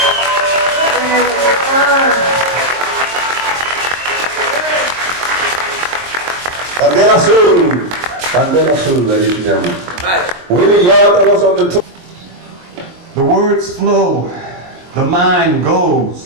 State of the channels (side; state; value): left; late; 23 ms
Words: Candela Azul, ladies and gentlemen. Willie Yard was on the tour. The words flow, the mind